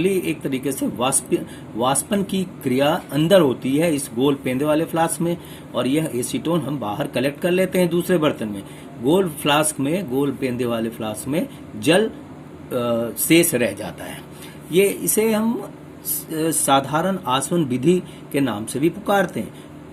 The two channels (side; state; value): both; identical; correlation 1.00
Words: एक तरीके से वाष्पन की क्रिया अंदर होती है इस गोल पेंदे वाले फ्लास्क में, और यह एसीटोन हम बाहर कलेक्ट कर लेते हैं दूसरे बर्तन में। गोल फ्लास्क में, गोल पेंदे वाले फ्लास्क में जल शेष रह जाता है। इसे हम साधारण आसवन विधि के नाम से भी पुकारते हैं।